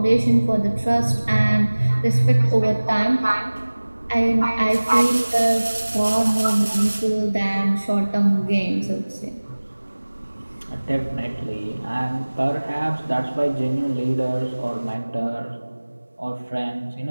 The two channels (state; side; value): inverted; both; correlation -1.00